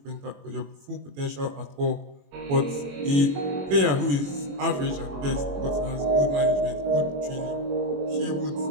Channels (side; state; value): left; late; 21 ms